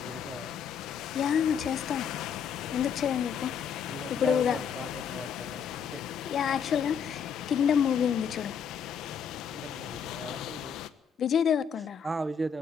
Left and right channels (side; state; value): right; quieter; 7.2 dB